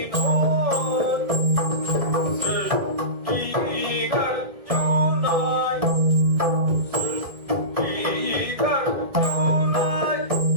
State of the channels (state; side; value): late; left; 1.6 ms